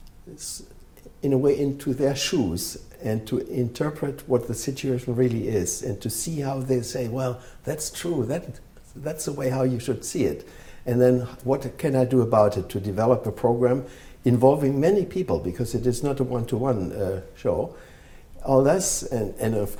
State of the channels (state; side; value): identical; both; correlation 1.00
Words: in a way, into their shoes and to interpret what the situation really is and to see how they say, well, that's true, that's the way how you should see it. And then what can I do about it to develop a program involving many people, because it is not a one-to-one show. All this, and of